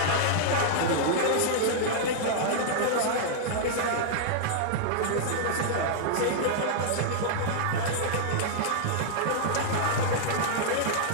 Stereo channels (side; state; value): both; different; correlation -0.01